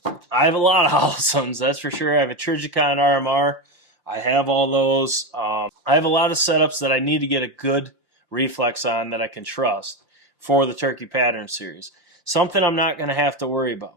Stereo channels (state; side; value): late; left; 5.7 ms